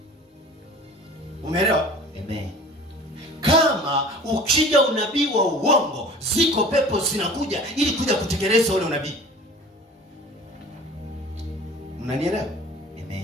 Umeelewa? Amen. Kama ukija unabii wa uongo, ziko pepo zinakuja ili kuja kutekeleza ule unabii. Mnanielewa?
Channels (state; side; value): normal; both; correlation 0.43